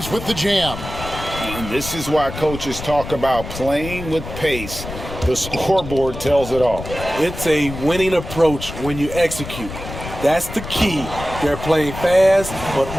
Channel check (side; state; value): left; noise; rumble, 10 dB below the sound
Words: with the jam. And this is why coaches talk about playing with pace. The scoreboard tells it all. It's a winning approach when you execute. That's the key. They're playing fast, but